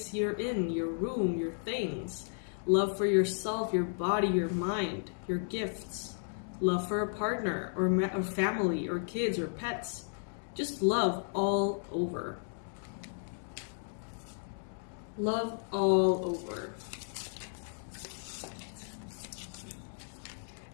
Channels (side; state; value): right; silent; digital silence